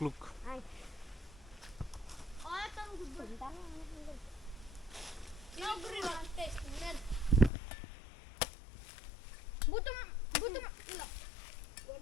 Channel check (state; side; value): drops out; right; at 7.5 s